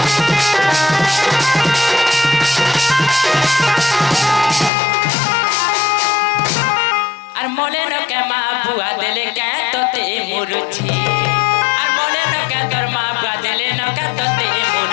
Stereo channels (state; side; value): drops out; right; at 4.7 s